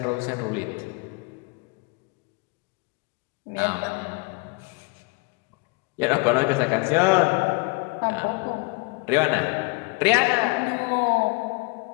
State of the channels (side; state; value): right; quieter; 26.9 dB